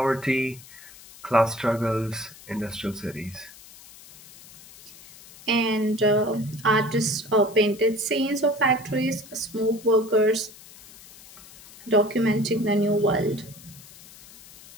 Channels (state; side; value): noise; left; hiss, 20 dB below the sound